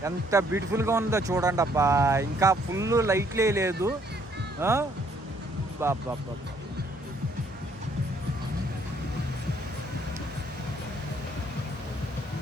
ఎంత బ్యూటిఫుల్గా ఉందో చూడండి అబ్బా. ఇంకా ఫుల్ లైట్లే లేదు. బాబా,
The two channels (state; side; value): normal; both; correlation 0.66